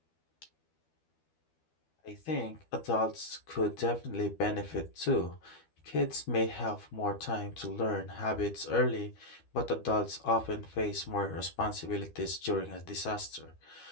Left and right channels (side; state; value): right; late; 12 ms